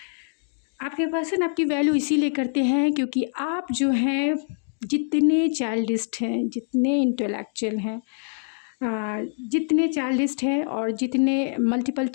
आपके पर्सन आपकी वैल्यू इसीलिए करते हैं क्योंकि आप जो हैं जितने चाइल्डिस्ट हैं, जितने इंटेलेक्चुअल हैं, जितने चाइल्डिस्ट हैं और जितने मल्टीपल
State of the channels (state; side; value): silent; right; digital silence